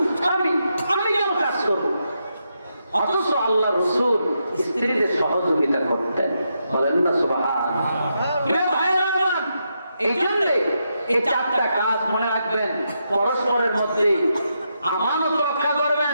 স্বামী, আমি কেন কাজ করবো? অথচ আল্লাহ রাসূল স্ত্রীদের সহযোগিতা করতেন। বলেন না সুবহানাল্লাহ। এই জন্য এই 4টা কাজ মনে রাখবেন। পরস্পরের মধ্যে আমানত রক্ষা করবেন,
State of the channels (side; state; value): both; inverted; correlation -0.83